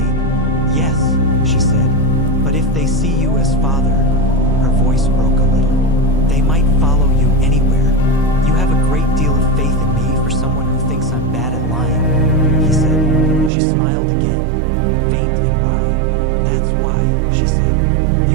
Yes, she said, but if they see you as father, her voice broke a little. They might follow you anywhere. You have a great deal of faith in me for someone who thinks I'm bad at lying, he said. She smiled again, faint and wry. That's why, she said.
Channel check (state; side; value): drops out; left; at 13.5 s